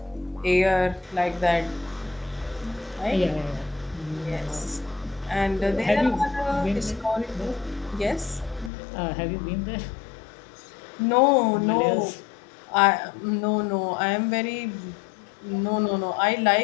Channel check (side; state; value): right; drops out; at 8.7 s